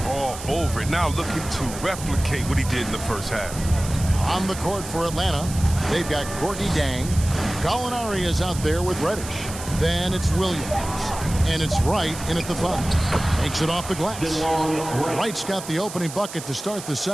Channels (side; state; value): right; noise; hiss, 11 dB below the sound